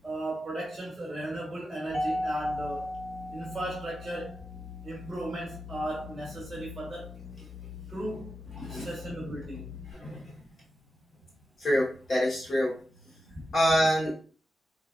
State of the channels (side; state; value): both; normal; correlation 0.89